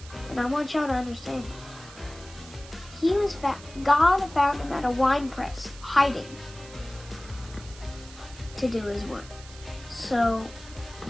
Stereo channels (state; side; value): noise; right; hiss, 18 dB below the sound